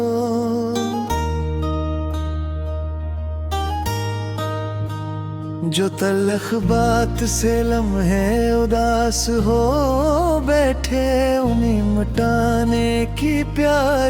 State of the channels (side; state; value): both; identical; correlation 1.00